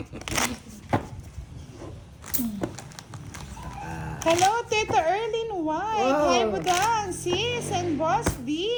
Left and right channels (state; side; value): identical; both; correlation 1.00